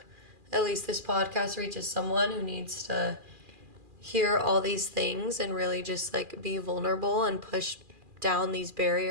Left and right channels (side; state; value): left; late; 2.4 ms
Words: at least this podcast reaches someone who needs to hear all these things and really just like be vulnerable and push down these